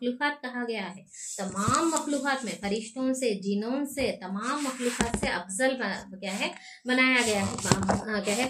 कहा गया है। तमाम मखलूकात में फरिश्तों से, जिनों से, तमाम मखलूकात से अफजल क्या है बनाया गया है, क्या है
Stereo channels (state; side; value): identical; both; correlation 1.00